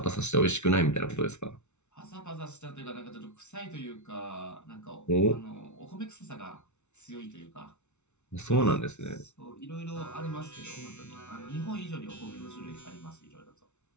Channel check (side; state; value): right; late; 0.82 ms